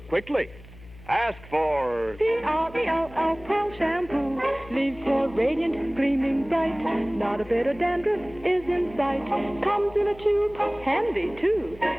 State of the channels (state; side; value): noise; left; hum, 20 dB below the sound